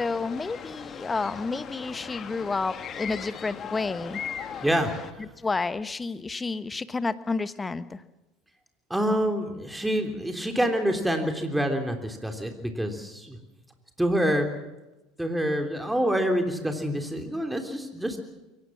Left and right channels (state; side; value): normal; both; correlation 0.84